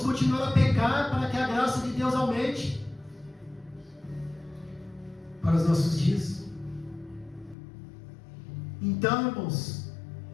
continuar a pecar para que a graça de Deus aumente para os nossos dias. Então, irmãos,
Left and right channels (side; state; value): right; drops out; at 7.6 s